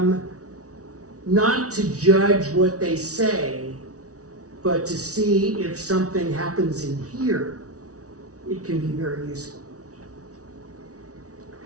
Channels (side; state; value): left; late; 0.67 ms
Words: not to judge what they say, but to see if something happens in here, it can be very useful.